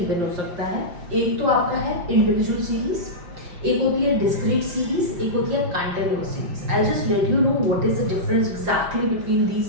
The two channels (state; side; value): late; left; 5.7 ms